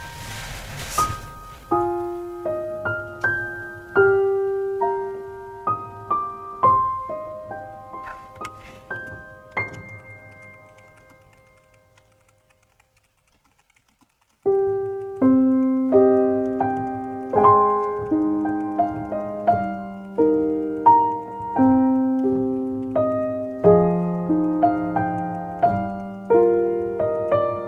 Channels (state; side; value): identical; both; correlation 1.00